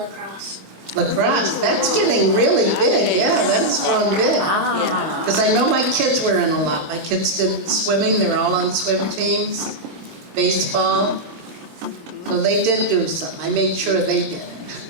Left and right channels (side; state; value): left; late; 25 ms